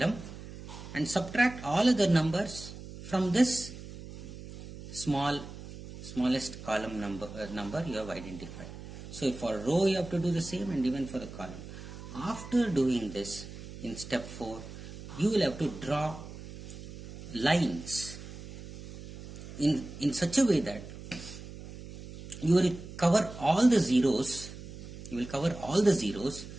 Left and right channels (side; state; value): right; noise; hum, 13 dB below the sound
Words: and subtract all other numbers from this smallest column number you have identified. So for row you have to do the same, and even for the column. After doing this, in step 4, you will have to draw lines in such a way that you will cover all the zeros. You will cover all the zeros